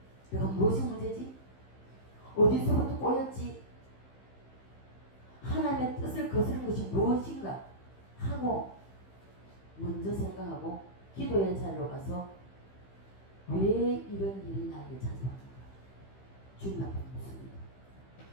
내가 무엇이 문제지? 어디서부터 꼬였지? 하나님의 뜻을 거스른 것이 무엇인가 하고 먼저 생각하고 기도의 자리로 가서 왜 이런 일이 나에게 찾아왔는가? 주님 앞에 묻습니다.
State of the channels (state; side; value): late; right; 15 ms